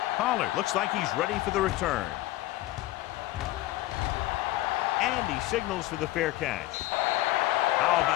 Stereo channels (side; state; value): right; quieter; 16.7 dB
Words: Pollard looks like he's ready for the return. And he signals for the fair catch. How